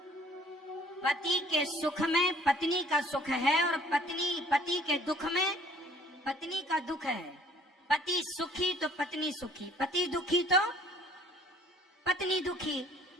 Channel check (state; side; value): normal; both; correlation 0.56